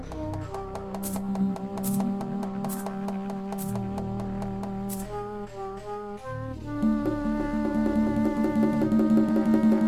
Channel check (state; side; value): identical; both; correlation 1.00